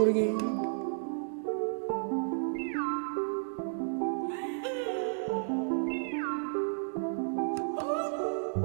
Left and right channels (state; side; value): silent; left; digital silence